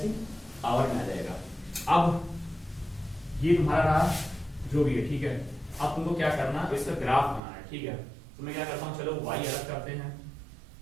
पावर में आ जाएगा। अब ये तुम्हारा रहा जो भी है, ठीक है। अब तुमको क्या करना, इसका ग्राफ बनाना है, ठीक है। तो मैं क्या करता हूँ, चलो y अलग करते हैं,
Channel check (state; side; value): drops out; left; at 7.4 s